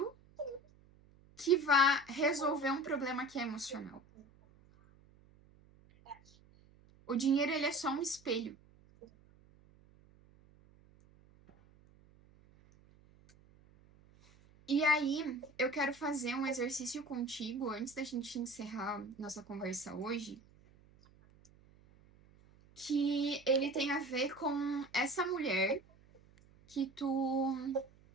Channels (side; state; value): right; noise; hum, 27 dB below the sound